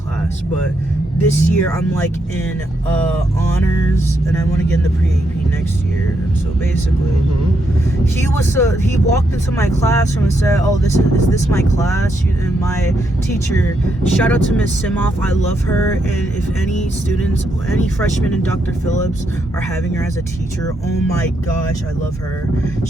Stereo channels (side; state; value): both; normal; correlation 0.79